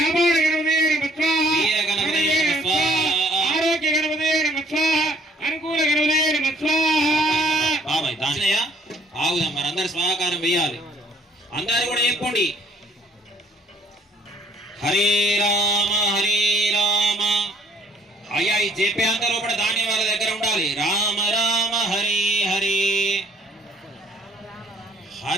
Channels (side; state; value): both; normal; correlation 0.59